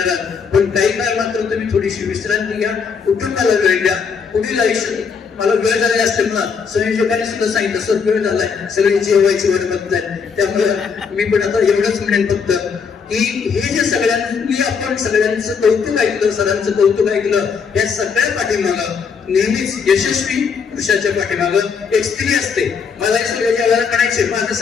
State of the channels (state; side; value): quieter; right; 6.0 dB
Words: आहोत. पण काही काळ मात्र तुम्ही थोडीशी विश्रांती घ्या, कुटुंबाला वेळ द्या. पुढील आयुष्य मला वेळ झालेला असल्यामुळे संयोजकांनी सुद्धा सांगितलं सर वेळ झालाय, सगळ्यांची जेवायची वेळ बघताय. त्यामुळे मी पण आता एवढंच म्हणेन फक्त की हे जे सगळ्यांनी आपण सगळ्यांचं कौतुक ऐकलं, सरांचं कौतुक ऐकलं, या सगळ्या पाठीमागं नेहमीच यशस्वी पुरुषाच्या पाठीमागं एक स्त्री असते. मला हे सगळ्या जगाला म्हणायचे माझं